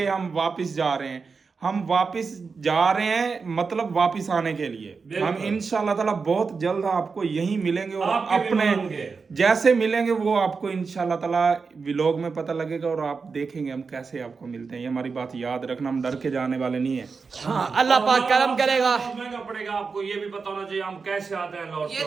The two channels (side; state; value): left; quieter; 4.9 dB